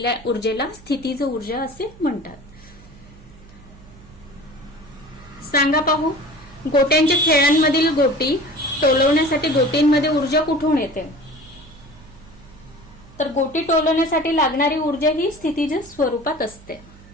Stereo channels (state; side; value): noise; right; hum, 22 dB below the sound